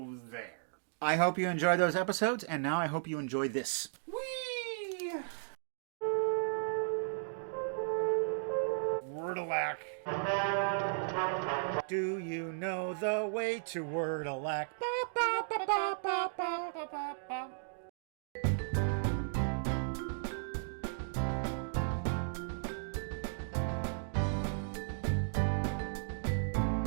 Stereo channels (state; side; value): silent; left; digital silence